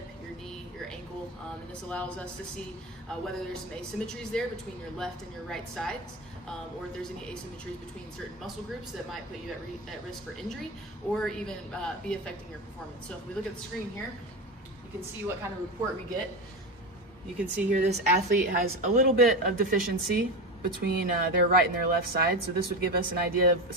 your knee, your ankle, and this allows us to see whether there's some asymmetries there between your left and your right sides, or if there's any asymmetries between certain muscle groups that might put you at risk for injury, or even be affecting your performance. So if we look at the screen here, you can see what kind of report we get. You can see here this athlete has a little bit of deficiency between their right and their left side. So this would give us an idea of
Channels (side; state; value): both; normal; correlation 0.20